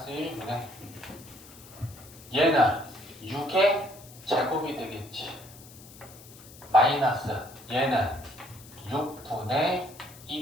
1분의 얘는 6의 제곱이 되겠지. 마이너스 얘는 6분의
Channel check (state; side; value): noise; left; hiss, 20 dB below the sound